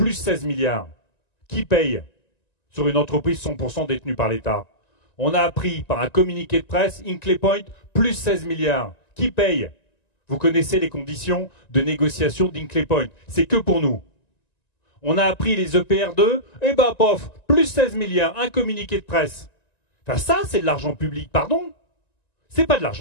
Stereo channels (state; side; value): late; right; 1.9 ms